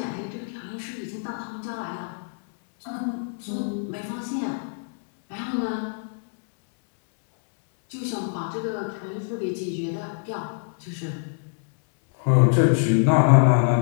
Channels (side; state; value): right; silent; digital silence